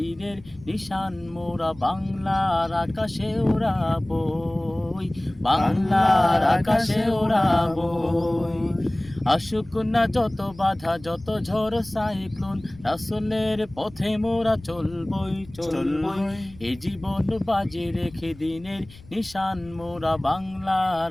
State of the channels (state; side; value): noise; left; rumble, 21 dB below the sound